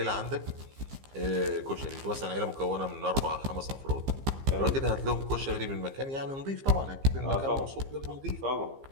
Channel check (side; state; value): left; late; 15 ms